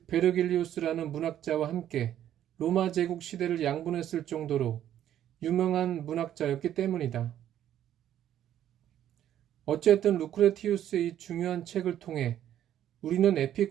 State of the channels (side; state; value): left; quieter; 11.2 dB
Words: 베르길리우스라는 문학자와 함께 로마 제국 시대를 양분했을 정도로 유명한 문학자였기 때문이다. 어쨌든 루크레티우스의 이 중요한 책을 통해 우리는